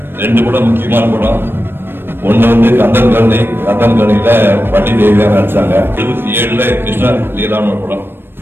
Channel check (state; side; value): late; left; 0.10 ms